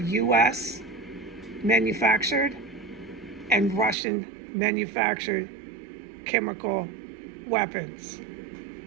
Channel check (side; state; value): left; drops out; at 4.0 s